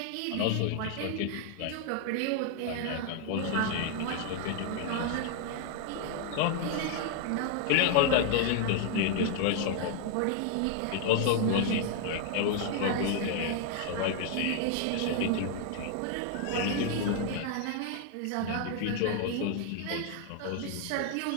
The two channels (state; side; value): different; both; correlation 0.00